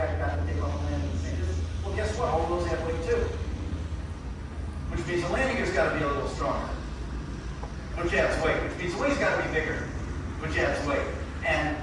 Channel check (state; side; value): identical; both; correlation 1.00